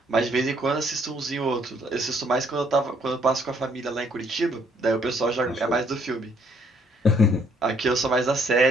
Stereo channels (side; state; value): both; normal; correlation 0.67